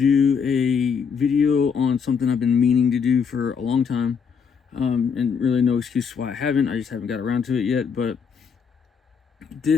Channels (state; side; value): quieter; right; 6.3 dB